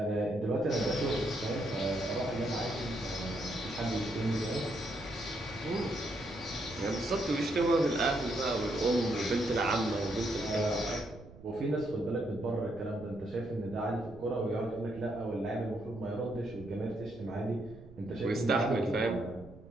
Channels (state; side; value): noise; right; rumble, 18 dB below the sound